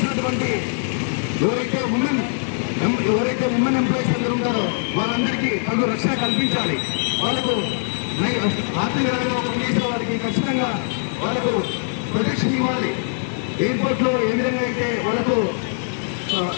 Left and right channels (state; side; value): silent; right; digital silence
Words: ఎవరైతే ఉమెన్ ఎంప్లాయీస్ అందరూ ఉంటారో వాళ్ళందరికీ తగు రక్షణ కల్పించాలి. వాళ్ళకు ఆర్థికంగా ఒక పోలీసు వారికి ఖచ్చితంగా వాళ్ళకు ప్రొటెక్షన్ ఇవ్వాలి. ఎయిర్పోర్ట్లో ఏ విధంగా అయితే వాళ్ళకు